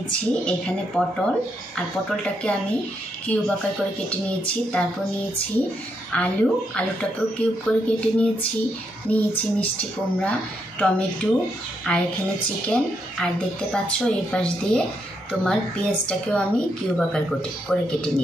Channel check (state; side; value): normal; both; correlation 0.79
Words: এখানে পটল, আর পটলটাকে আমি কিউব আকার করে কেটে নিয়েছি। তারপর নিয়েছি আলুটাকেও কিউব করে কেটে নিয়েছি মিষ্টি কুমড়া, টমেটো, আর এখানে চিকেন, আর দেখতে পাচ্ছ এই পাশ দিয়ে তোমার পেঁয়াজটাকেও আমি কিউব আকার করে কেটে